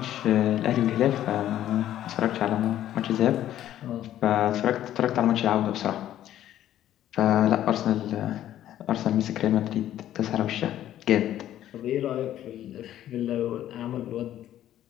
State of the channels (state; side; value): quieter; right; 12.2 dB